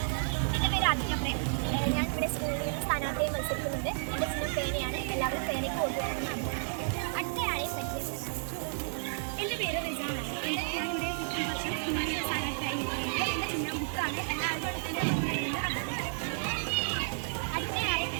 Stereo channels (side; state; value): left; silent; digital silence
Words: എൻ്റെ പേര് ആദിത്യപ്രേം. ഞാൻ ഇവിടെ സ്കൂളിൽ സ്ഥാനാർത്ഥിയെ മത്സരിക്കുന്നുണ്ട്. എൻ്റെ ചിഹ്നം പേനയാണ്. എല്ലാവരും പേനയ്ക്ക് കൊടുക്കുന്നതാണ്. അടുത്തയാളെ പരിചയപ്പെടാം. എൻ്റെ പേര് റിജാനാണ്. ഞാനിവിടെ സ്ഥാനാർത്ഥിയായി എൻ്റെ ചിഹ്നം ബുക്കാണ്.